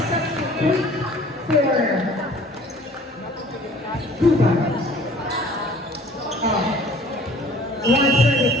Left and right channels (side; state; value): both; normal; correlation 0.51